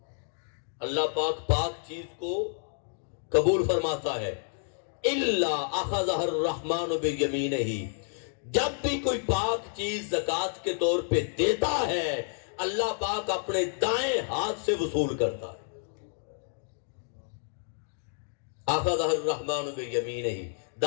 اللہ پاک پاک چیز کو قبول فرماتا ہے۔ إِلَّا أَخَذَهَا الرَّحْمَنُ بِيَمِينِهِ، جب بھی کوئی پاک چیز زکوٰۃ کے طور پہ دیتا ہے اللہ پاک اپنے دائیں ہاتھ سے وصول کرتا ہے۔ أَخَذَهَا الرَّحْمَنُ بِيَمِينِهِ،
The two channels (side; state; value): right; silent; 58 dB below the other